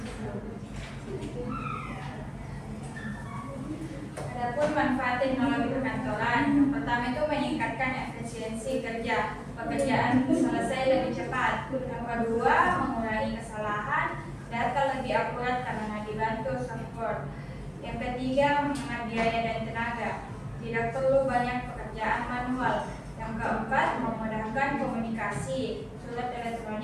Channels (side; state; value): both; identical; correlation 1.00